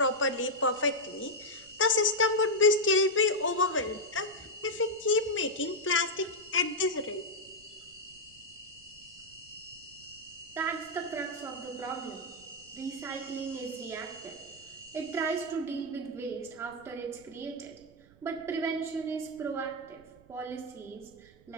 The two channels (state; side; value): noise; right; rumble, 26 dB below the sound